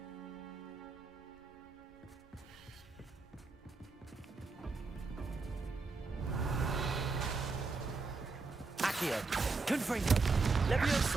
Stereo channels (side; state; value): left; quieter; 4.1 dB